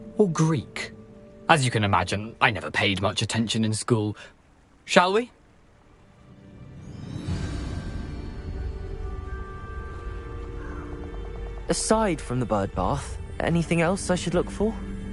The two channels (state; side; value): identical; both; correlation 1.00